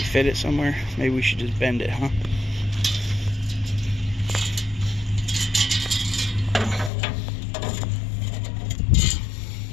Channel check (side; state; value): right; drops out; at 6.9 s